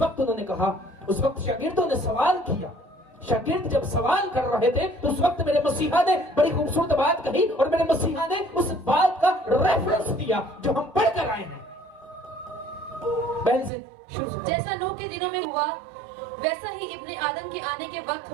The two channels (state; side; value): drops out; left; at 13.7 s